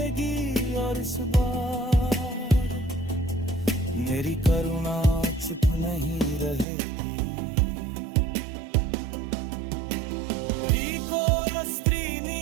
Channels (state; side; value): drops out; left; at 6.7 s